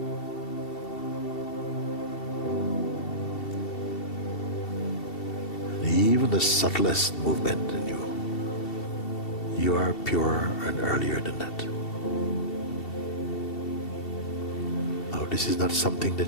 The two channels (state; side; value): late; right; 2.7 ms